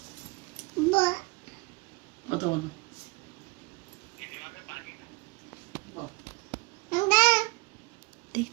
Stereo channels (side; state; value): left; quieter; 25.3 dB